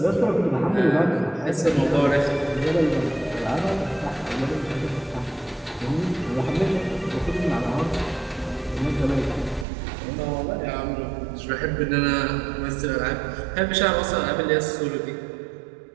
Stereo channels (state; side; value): drops out; left; at 9.7 s